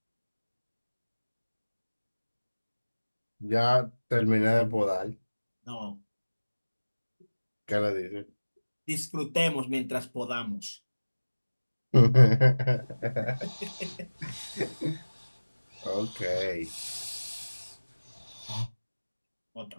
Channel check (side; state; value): both; inverted; correlation -1.00